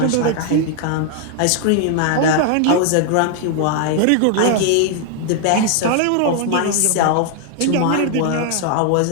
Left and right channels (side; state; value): both; different; correlation 0.00